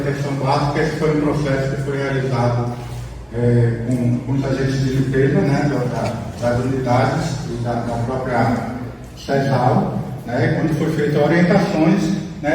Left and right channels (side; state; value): both; identical; correlation 1.00